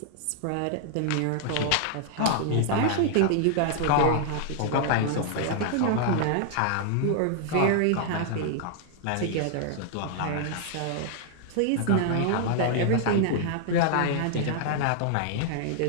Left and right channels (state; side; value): different; both; correlation -0.01